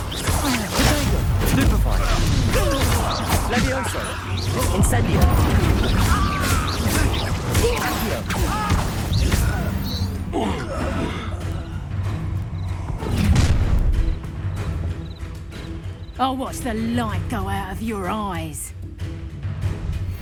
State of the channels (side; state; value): both; identical; correlation 1.00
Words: Stupefy. Levioso. Incendio. I'll watch the light go out of your eyes.